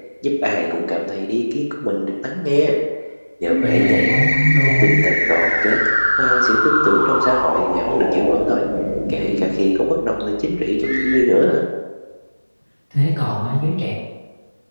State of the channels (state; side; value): inverted; both; correlation -1.00